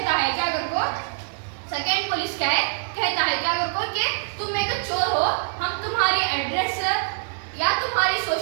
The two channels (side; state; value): left; silent; digital silence